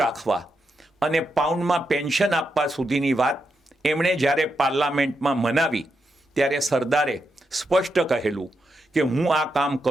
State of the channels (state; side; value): normal; both; correlation 0.84